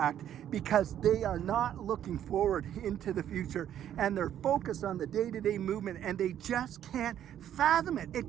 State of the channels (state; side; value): quieter; left; 10.6 dB